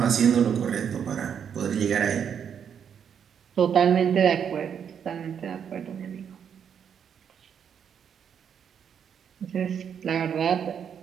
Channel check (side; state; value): left; quieter; 7.9 dB